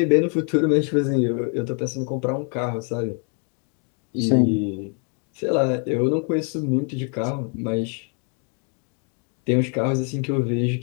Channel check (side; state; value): right; quieter; 39.5 dB